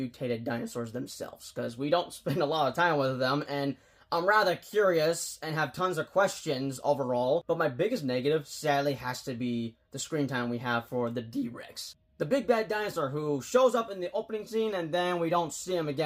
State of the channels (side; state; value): both; identical; correlation 1.00